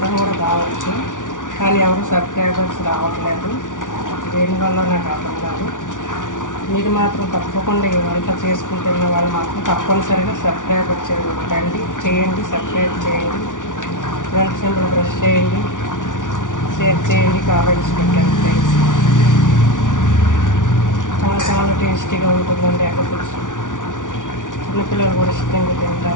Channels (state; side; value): late; right; 0.87 ms